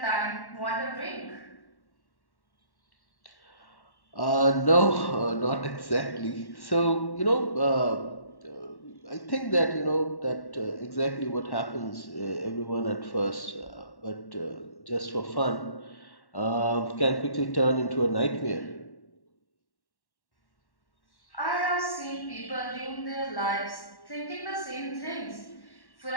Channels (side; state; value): right; late; 1.1 ms